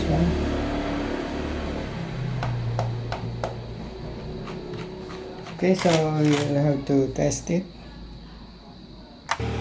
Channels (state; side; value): identical; both; correlation 1.00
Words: one. Okay, so you'll have to test it.